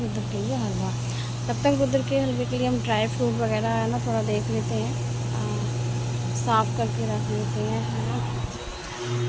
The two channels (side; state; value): both; identical; correlation 1.00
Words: के लिए हलवा। तब तक रुद्र के हलवे के लिए हम ड्राई फ्रूट वगैरह है ना थोड़ा देख लेते हैं, साफ़ करके रख लेते हैं, है ना,